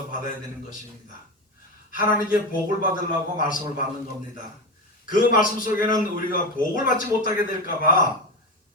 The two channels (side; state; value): both; normal; correlation 0.19